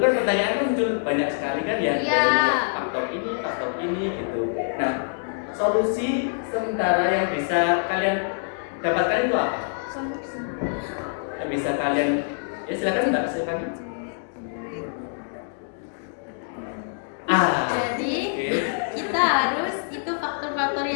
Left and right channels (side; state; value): right; silent; digital silence